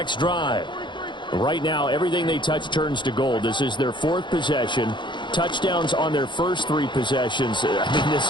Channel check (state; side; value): late; right; 0.23 ms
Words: drive. Right now, everything they touch turns to gold. This is their 4th possession. touchdowns on their first 3 possessions. I mean, this